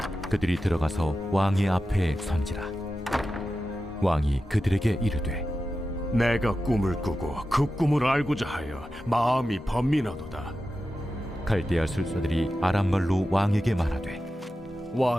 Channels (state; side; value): normal; both; correlation 0.92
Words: 그들이 들어가서 왕의 앞에 선지라. 왕이 그들에게 이르되 내가 꿈을 꾸고 그 꿈을 알고자 하여 마음이 번민하도다. 갈대아 술사들이 아람말로 왕에게 말하되